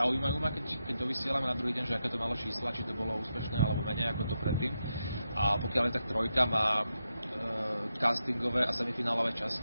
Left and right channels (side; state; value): both; inverted; correlation -0.86